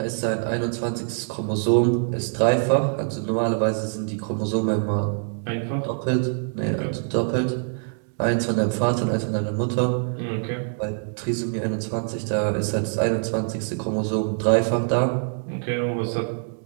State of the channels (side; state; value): left; silent; 62 dB below the other